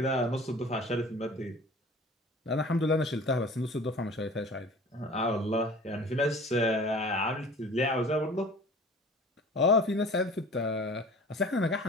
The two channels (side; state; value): both; normal; correlation 0.43